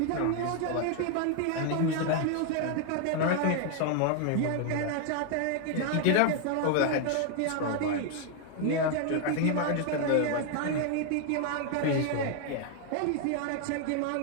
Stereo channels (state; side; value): different; both; correlation 0.00